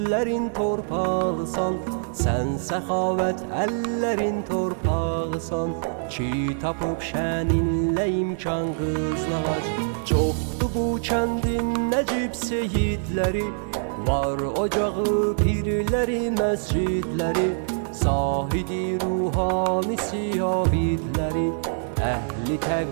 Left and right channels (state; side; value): silent; left; digital silence